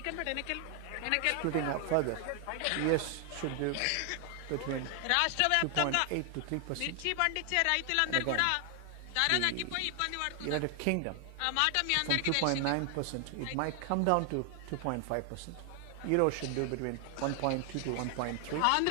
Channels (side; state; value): both; different; correlation 0.00